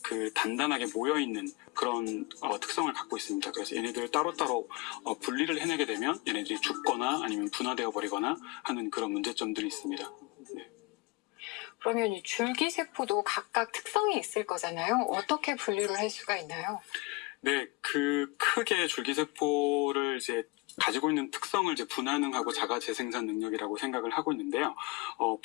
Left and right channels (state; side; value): quieter; right; 25.6 dB